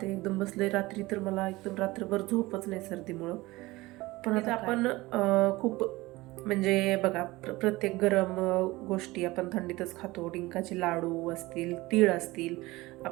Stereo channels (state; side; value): quieter; left; 20.3 dB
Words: ते एकदम बसले. रात्री तर मला एकदम रात्रभर झोपच नाही सर्दीमुळं. पण आता आपण खूप म्हणजे बघा, प्रत्येक गरम गोष्टी आपण थंडीतच खातो. डिंकाचे लाडू असतील, तीळ असतील,